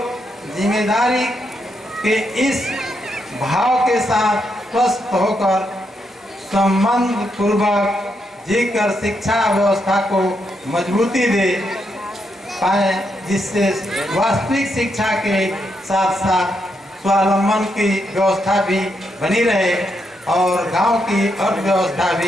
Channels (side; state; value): both; normal; correlation 0.80